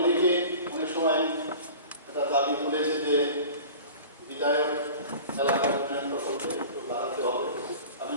অনেক সময় একটা দাবি তুলেছে যে বিধায়ক এলাকার উন্নয়ন প্রকল্পে একটু বাড়াতে হবে। আমি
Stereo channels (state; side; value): inverted; both; correlation -0.39